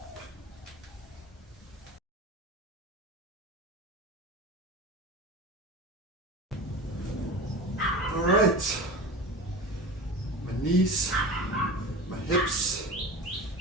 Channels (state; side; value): normal; both; correlation 0.31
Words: Alright. My knees, my hips,